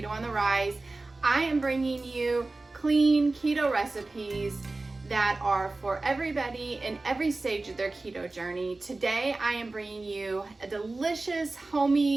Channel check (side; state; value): left; quieter; 3.2 dB